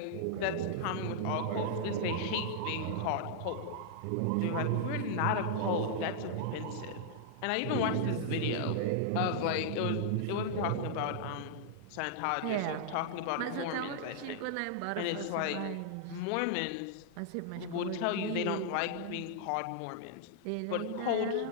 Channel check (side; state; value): both; different; correlation -0.01